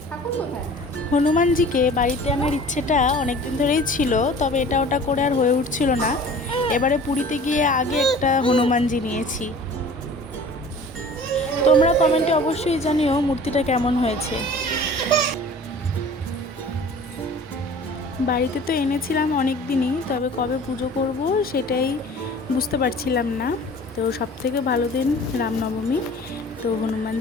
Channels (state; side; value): normal; both; correlation 0.45